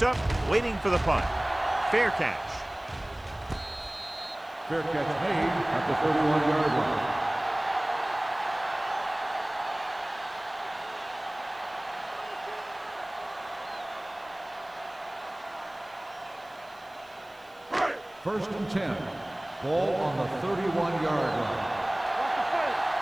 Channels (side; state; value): right; noise; hiss, 30 dB below the sound